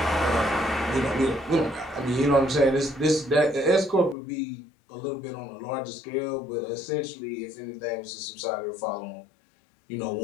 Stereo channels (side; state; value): right; drops out; at 4.2 s